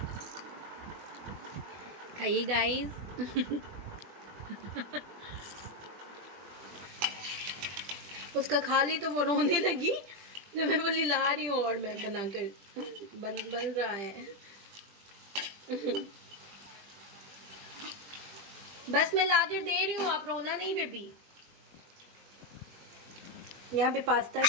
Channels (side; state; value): left; late; 20 ms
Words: खाइए गाइस। उसका खा ली तो वो रोने लगी, जब मैं बोली ला रही हूँ और मैं बनाकर बन रहा है। बस मैं लाकर दे रही हूँ, आप रोना नहीं बेबी। यहाँ पे पास्ता